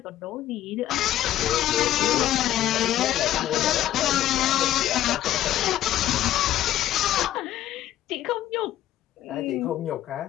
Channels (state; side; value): quieter; right; 12.7 dB